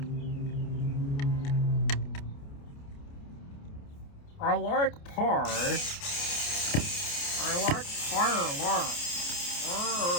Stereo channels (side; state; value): right; late; 29 ms